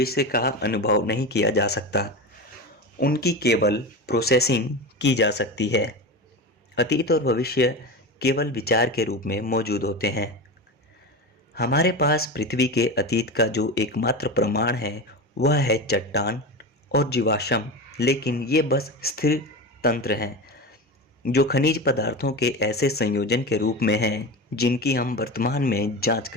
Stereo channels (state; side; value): normal; both; correlation 0.24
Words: का अनुभव नहीं किया जा सकता, उनकी केवल प्रोसेसिंग की जा सकती है। अतीत और भविष्य केवल विचार के रूप में मौजूद होते हैं। हमारे पास पृथ्वी के अतीत का जो एकमात्र प्रमाण है वह है चट्टान और जीवाश्म, लेकिन ये बस स्थिर तंत्र हैं जो खनिज पदार्थों के ऐसे संयोजन के रूप में हैं जिनकी हम वर्तमान में जांच